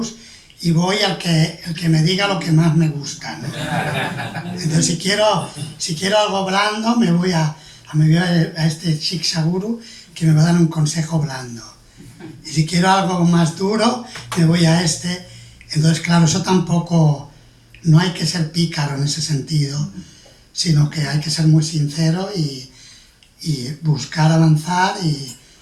y voy al que me diga lo que más me gusta, ¿no? Entonces, si quiero algo blando, me voy a este Shiksha Guru que me va a dar un consejo blando. Y si quiero algo más duro, me voy a este. Entonces, claro, eso tampoco, no hay que ser pícaro en ese sentido, sino que hay que ser muy sincero y buscar avanzar y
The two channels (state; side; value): identical; both; correlation 1.00